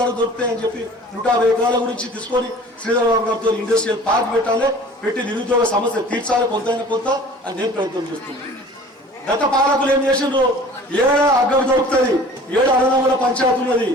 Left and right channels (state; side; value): normal; both; correlation 0.46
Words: దొరుకుతాయని చెప్పి 150 ఎకరాల గురించి తీసుకొని శ్రీధర్ బాబు గారితో ఇండస్ట్రియల్ పార్క్ పెట్టాలి, పెట్టి నిరుద్యోగ సమస్య తీర్చాలి కొంతైనా కొంత అని నేను ప్రయత్నం చేస్తున్నాను. గత పాలకులు ఏం చేసిండ్రు, ఏడ అగ్గం దొరుకుతుంది, ఏడ అన్నదమ్ముల పంచాయతీ ఉన్నది,